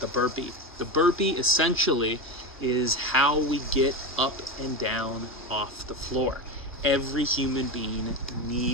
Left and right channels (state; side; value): normal; both; correlation 0.19